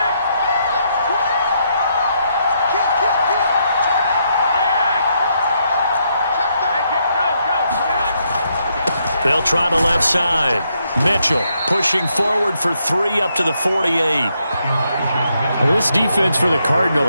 They'll try the left side. Mitchell pushing forward for 3 up to the 48. Well, this defense for the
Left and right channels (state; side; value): inverted; both; correlation -0.77